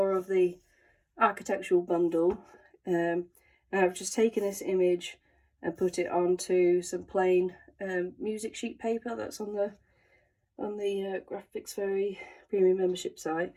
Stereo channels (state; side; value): identical; both; correlation 1.00